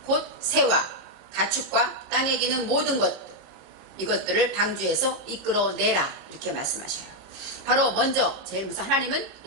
곧 새와 가축과 땅에 기는 모든 것 이것들을 방주에서 이끌어내라 이렇게 말씀하셔요. 바로 먼저 제일 먼저 하나님은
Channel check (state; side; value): late; left; 33 ms